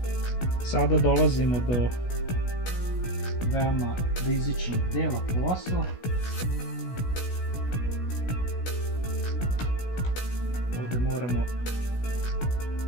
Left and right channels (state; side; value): late; right; 16 ms